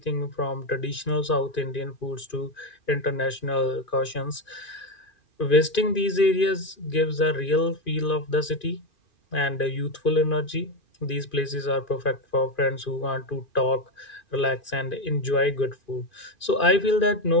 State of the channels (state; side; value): late; right; 2.5 ms